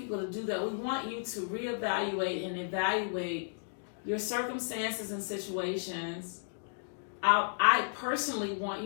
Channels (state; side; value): silent; right; digital silence